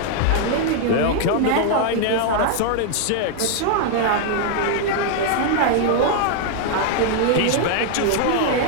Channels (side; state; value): both; different; correlation 0.00